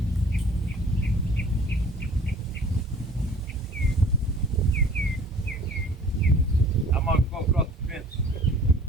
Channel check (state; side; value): normal; both; correlation 0.50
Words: I'm gonna go across the fence.